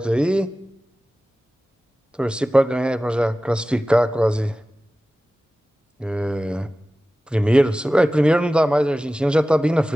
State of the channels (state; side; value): normal; both; correlation 0.96